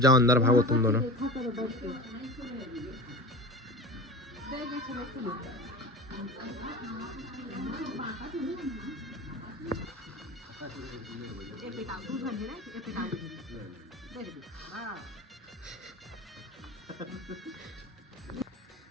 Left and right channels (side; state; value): both; normal; correlation 0.31